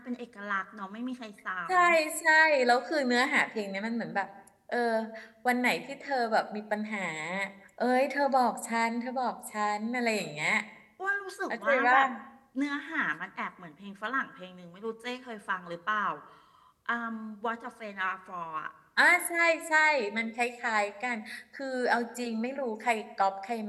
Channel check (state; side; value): identical; both; correlation 1.00